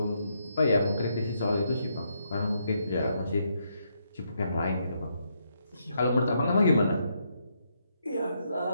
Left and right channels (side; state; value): both; inverted; correlation -0.77